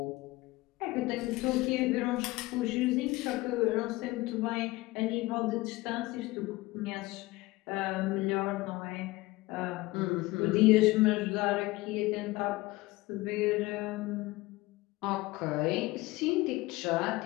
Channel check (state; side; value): quieter; right; 20.3 dB